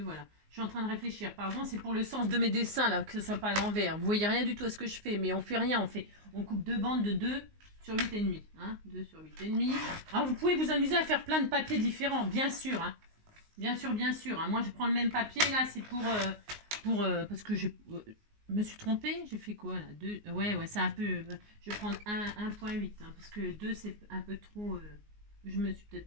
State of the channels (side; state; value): left; late; 19 ms